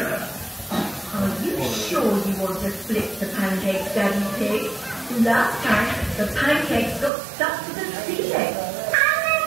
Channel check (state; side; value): drops out; left; at 7.1 s